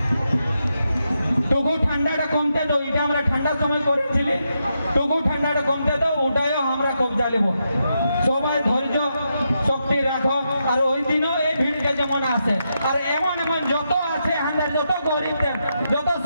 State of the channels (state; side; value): inverted; both; correlation -0.84